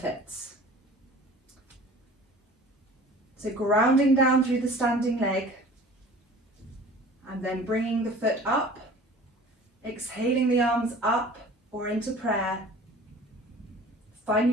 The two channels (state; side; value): normal; both; correlation 0.44